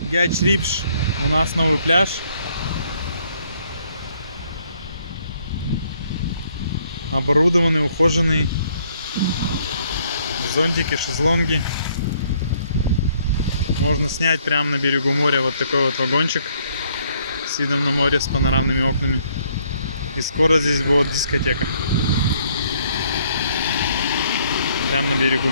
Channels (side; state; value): both; inverted; correlation -0.66